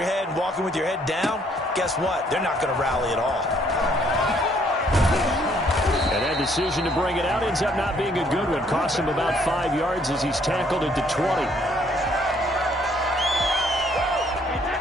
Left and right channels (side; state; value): both; normal; correlation 0.65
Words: head and walking with your head down, guess what? They're not going to rally at all. And that decision to bring it out ends up not being a good one. Cost him about 5 yards as he's tackled at the 20.